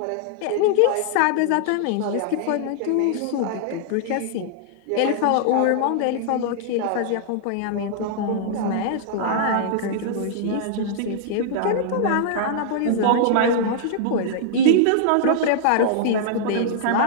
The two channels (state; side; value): different; both; correlation -0.01